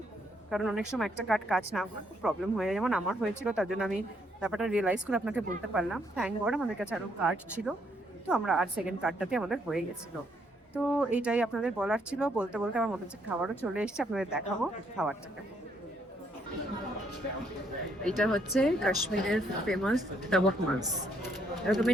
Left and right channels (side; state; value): both; normal; correlation 0.71